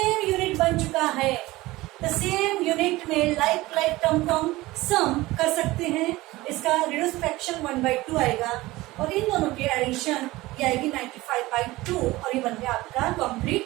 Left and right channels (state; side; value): quieter; left; 19.2 dB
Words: यूनिट बन चुका है। तो सेम यूनिट में लाइक टर्म सम कर सकते हैं। इसका रिड्यूस फ्रैक्शन 1/2 आएगा, और इन दोनों की एडिशन ये आएगी 95/2, और ये बन गया आपका